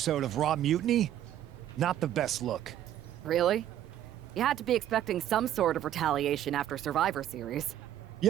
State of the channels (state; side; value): quieter; left; 11.6 dB